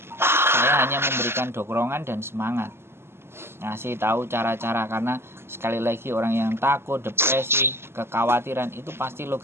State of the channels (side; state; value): left; late; 0.12 ms